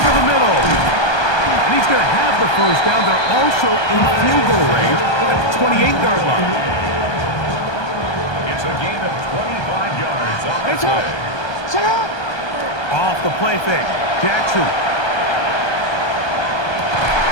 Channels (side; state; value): right; late; 1.2 ms